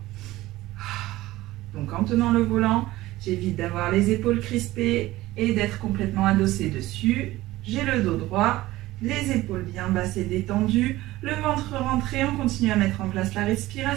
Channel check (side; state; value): left; quieter; 17.4 dB